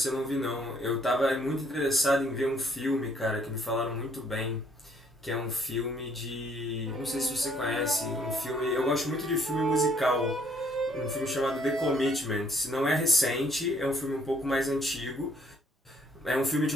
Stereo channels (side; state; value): both; normal; correlation 0.64